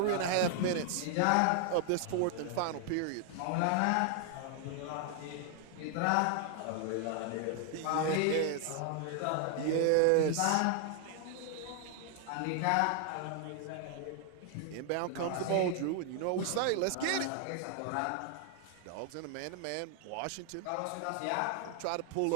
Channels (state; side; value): different; both; correlation 0.00